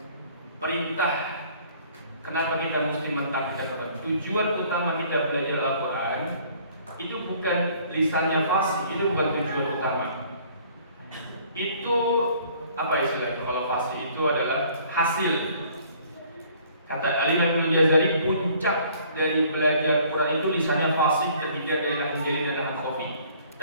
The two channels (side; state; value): both; inverted; correlation -0.57